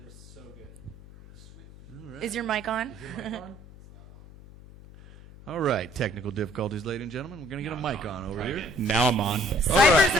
so good. Right. Is your mic on? All right, technical difficulties, ladies and gentlemen. We're going to get a mic on over here. Now I'm on.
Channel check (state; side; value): noise; left; hum, 19 dB below the sound